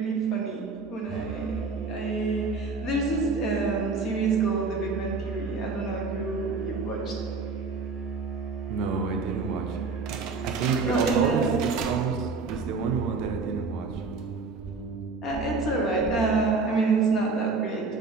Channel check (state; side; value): quieter; left; 4.2 dB